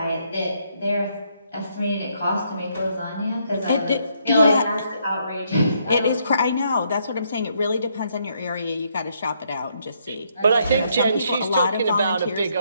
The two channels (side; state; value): both; inverted; correlation -0.73